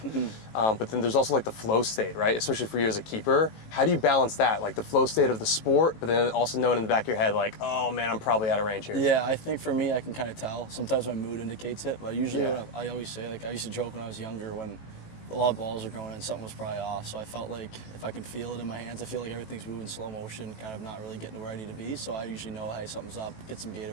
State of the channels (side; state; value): right; late; 18 ms